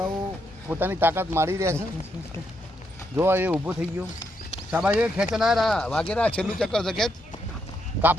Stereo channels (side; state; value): both; normal; correlation 0.79